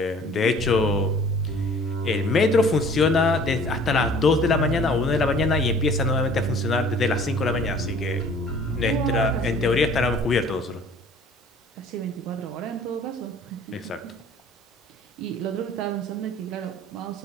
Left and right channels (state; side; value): normal; both; correlation 0.50